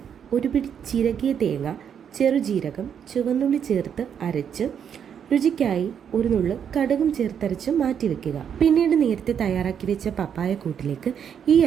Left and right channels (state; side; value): quieter; left; 8.1 dB